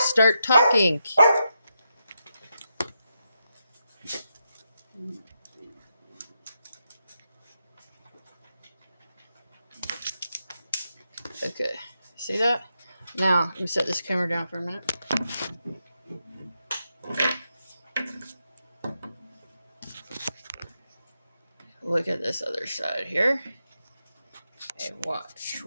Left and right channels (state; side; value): inverted; both; correlation -0.84